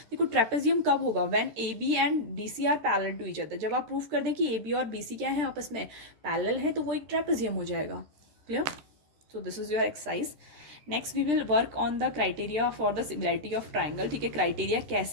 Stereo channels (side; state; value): left; late; 13 ms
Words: देखो ट्रेपेजियम कब होगा, when A B and D C are parallel to each other. जब आप प्रूफ कर दें कि ए बी और बी सी क्या है, आपस में पैरेलल है, तो वो एक ट्रेपेजियम हो जाएगा। Clear? So this is your exercise. Next we will work on the criteria for the similarity of triangle. ठीक है, क्राइटेरिया